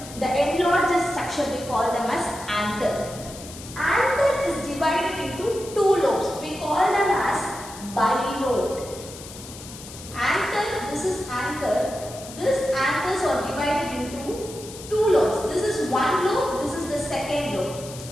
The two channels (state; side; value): noise; left; hiss, 15 dB below the sound